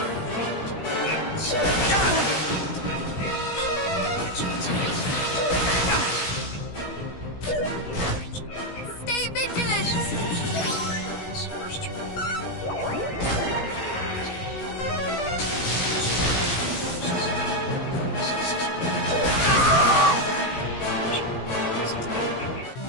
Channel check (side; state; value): right; late; 17 ms